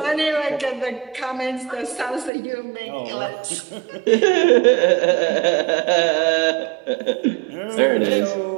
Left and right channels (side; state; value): left; drops out; at 2.3 s